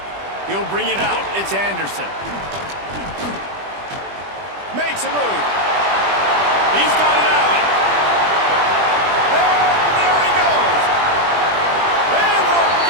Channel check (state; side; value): late; left; 20 ms